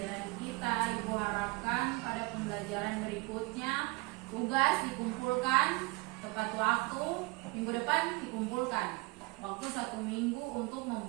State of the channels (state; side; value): quieter; left; 24.7 dB